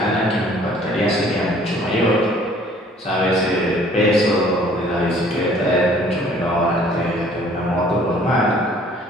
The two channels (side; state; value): both; normal; correlation 0.56